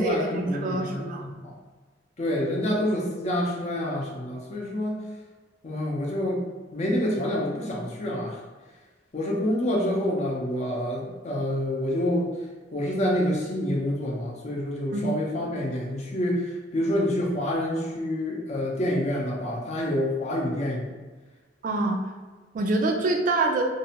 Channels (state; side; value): normal; both; correlation 0.56